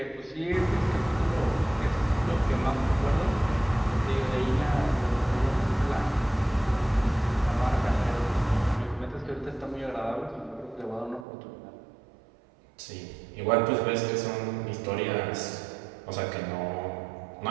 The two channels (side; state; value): left; drops out; at 11.2 s